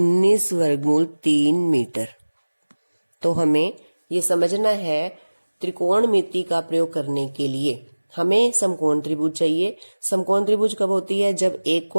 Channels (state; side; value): inverted; both; correlation -1.00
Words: वर्गमूल 3 मीटर। तो हमें ये समझना है, त्रिकोणमिति का प्रयोग करने के लिए हमें समकोण त्रिभुज चाहिए। समकोण त्रिभुज कब होती है, जब एक